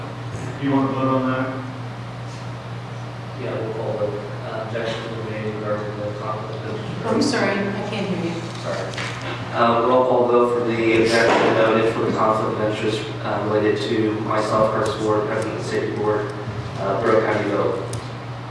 Do you want to vote on that? Yeah, we'll call the objection to the made regarding the conflict of interest. I'm sorry, I can't hear you. Sorry. Roll call vote for the objection noted for the conflict of interest related to myself, Curtis Ward, President of the Safety Board. Brooke, how do you vote?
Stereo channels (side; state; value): both; identical; correlation 1.00